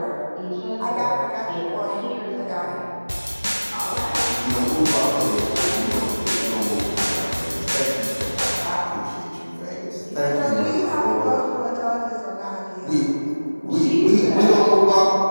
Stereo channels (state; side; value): inverted; both; correlation -1.00